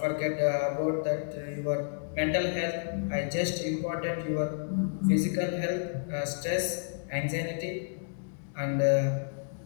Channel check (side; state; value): right; silent; digital silence